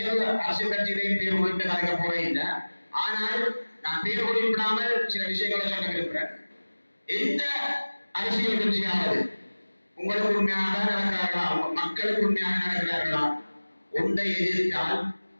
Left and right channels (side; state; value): both; inverted; correlation -1.00